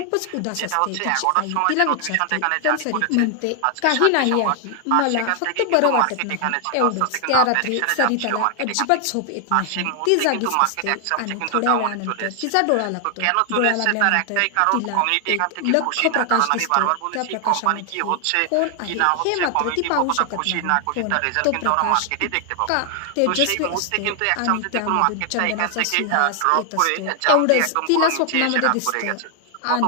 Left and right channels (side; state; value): both; different; correlation 0.00